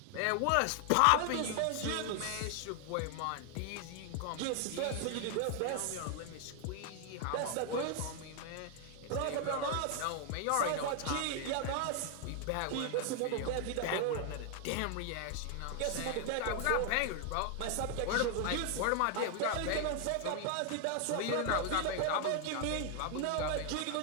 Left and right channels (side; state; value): both; different; correlation 0.00